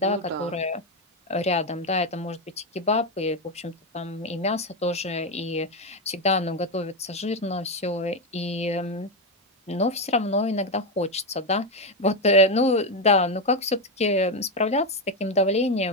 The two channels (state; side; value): normal; both; correlation 0.09